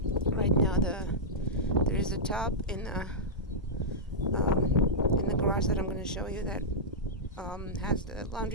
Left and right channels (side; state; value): both; normal; correlation -0.10